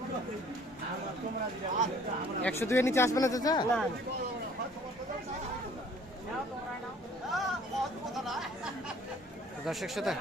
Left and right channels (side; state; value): both; normal; correlation 0.55